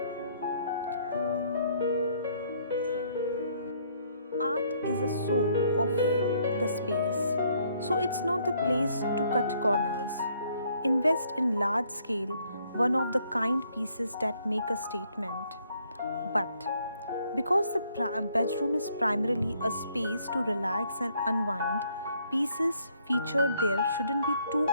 Art is the soul of the space, so it's not the place to cut corners. Invest in large scale, one of the kind pieces that make a statement. But because the bedroom is primarily a space to relax and unwind, pieces featured there shouldn't be too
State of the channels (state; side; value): inverted; both; correlation -0.68